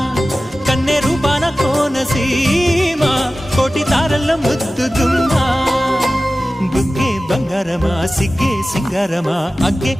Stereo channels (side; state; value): both; normal; correlation 0.96